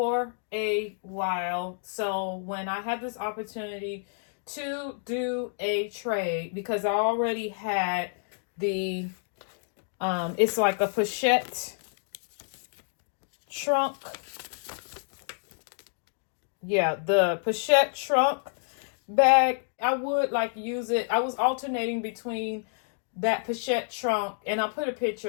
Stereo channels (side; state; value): right; silent; digital silence